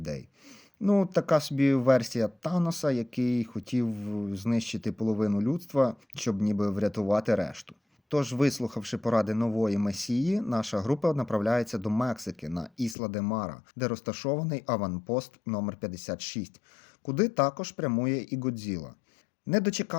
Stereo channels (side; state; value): right; drops out; at 13.0 s